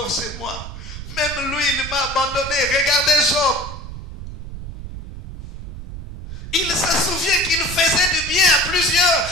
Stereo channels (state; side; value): noise; right; rumble, 10 dB below the sound